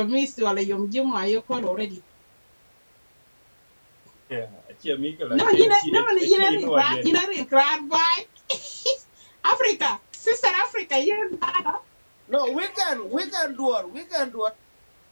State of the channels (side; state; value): both; inverted; correlation -1.00